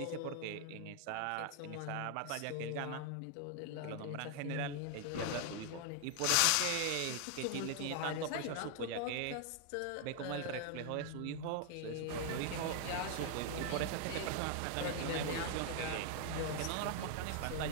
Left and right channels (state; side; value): different; both; correlation 0.00